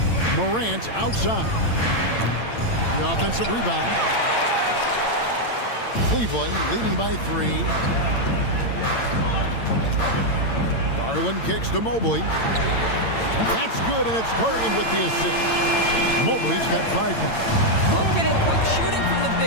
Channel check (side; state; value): right; late; 8.8 ms